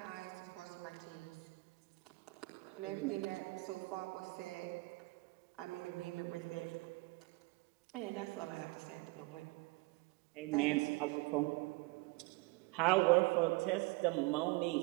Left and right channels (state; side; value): quieter; left; 24.8 dB